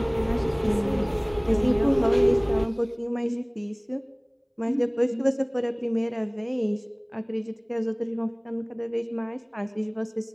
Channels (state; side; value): identical; both; correlation 1.00